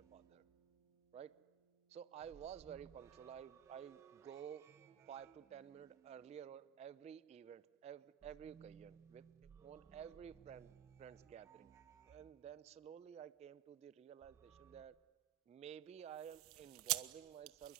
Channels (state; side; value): quieter; left; 11.3 dB